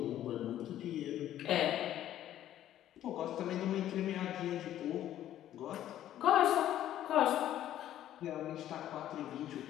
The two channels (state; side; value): quieter; right; 12.1 dB